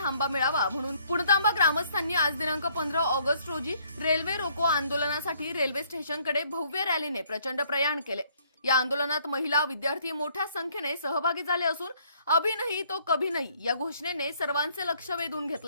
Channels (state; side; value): inverted; both; correlation -0.64